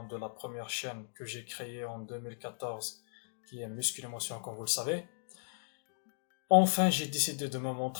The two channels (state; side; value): silent; right; digital silence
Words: de la première chaîne que j'ai créée en 2014, qui est Muscle Émotion, comme vous le savez. Enfin, j'ai décidé de me